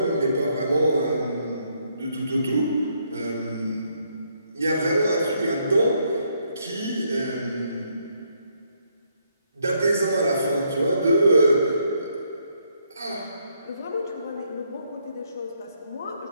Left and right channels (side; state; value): both; inverted; correlation -0.73